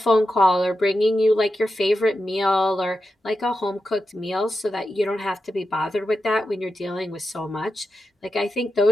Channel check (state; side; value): normal; both; correlation 0.89